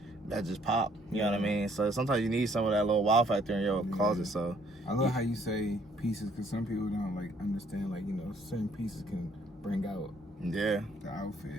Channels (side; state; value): both; normal; correlation 0.64